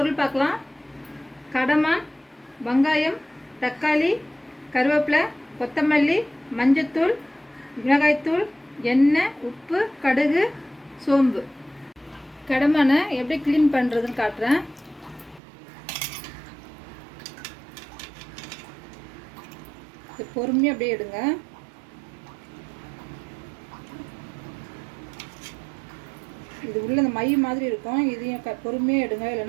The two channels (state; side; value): drops out; left; at 15.4 s